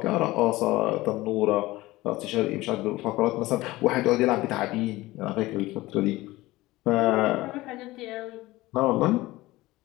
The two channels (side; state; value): right; quieter; 18.7 dB